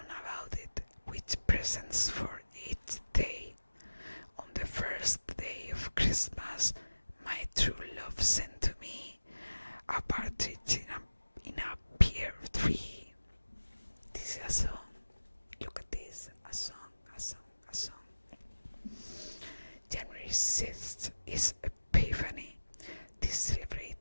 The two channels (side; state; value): both; inverted; correlation -1.00